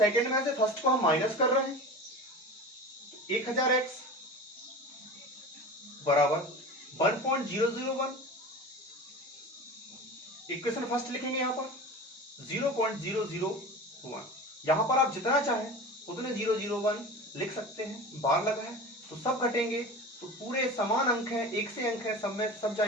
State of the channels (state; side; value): normal; both; correlation 0.33